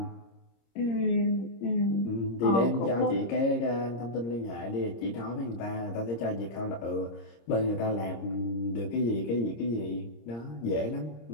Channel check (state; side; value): late; right; 26 ms